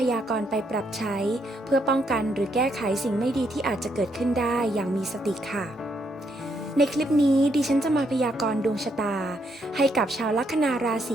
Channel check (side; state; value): both; normal; correlation 0.75